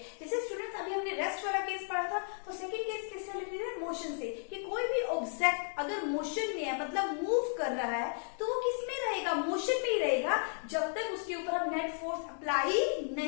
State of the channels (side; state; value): right; silent; 55 dB below the other